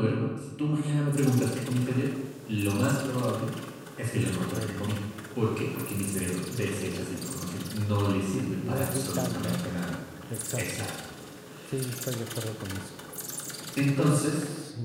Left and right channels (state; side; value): identical; both; correlation 1.00